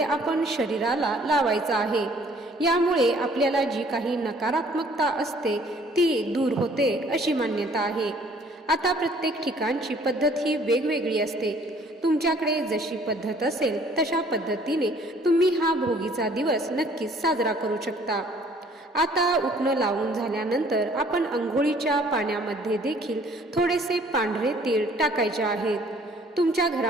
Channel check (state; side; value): normal; both; correlation 0.58